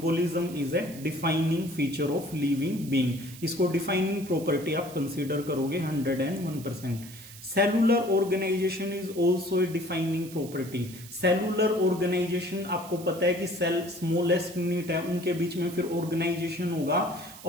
is a defining feature of living being. इसको डिफाइनिंग प्रॉपर्टी आप कंसीडर करोगे 101%। Cellular organisation is also a defining property. Cellular organisation, आपको पता है कि सेल स्मॉलेस्ट यूनिट है, उनके बीच में फिर ऑर्गेनाइजेशन होगा,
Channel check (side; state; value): right; noise; hiss, 17 dB below the sound